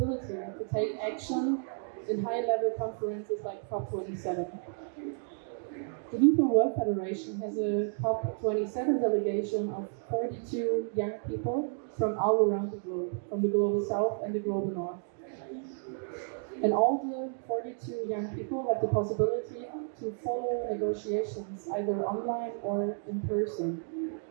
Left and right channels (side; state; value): left; silent; 57 dB below the other